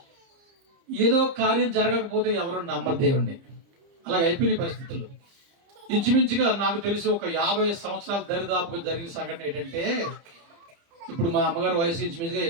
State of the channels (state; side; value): late; left; 30 ms